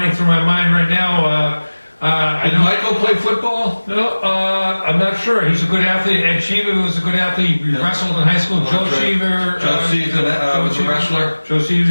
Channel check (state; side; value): inverted; both; correlation -1.00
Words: through my mind right now. Did Michael play football? No, I'm not sure. He's a good athlete. Ed Cheever was a good athlete. He wrestled in high school. Joe Cheever. Joe Cheever was a wrestler. Joe